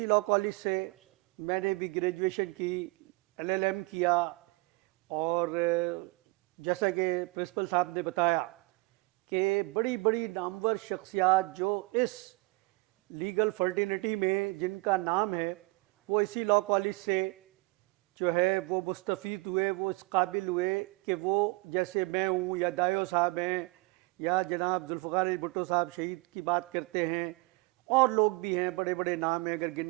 لاء کالج سے میں نے بھی گریجویشن کی, LLM کیا, اور جیسا کہ پرنسپل صاحب نے بتایا کہ بڑی بڑی نامور شخصیات جو اس لیگل فرٹینٹی میں جن کا نام ہے وہ اسی لاء کالج سے جو ہے وہ مستفید ہوئے, وہ اس قابل ہوئے کہ وہ جیسے میں ہوں یا دایو صاحب ہیں یا جناب ذوالفقار علی بھٹو صاحب شہید کی بات کرتے ہیں, اور لوگ بھی ہیں, بڑے بڑے نام ہیں, اگر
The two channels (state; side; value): quieter; left; 24.9 dB